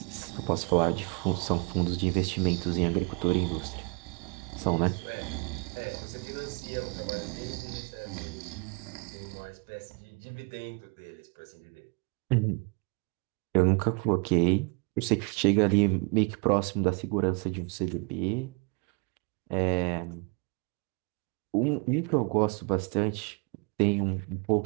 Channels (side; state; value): left; quieter; 32.3 dB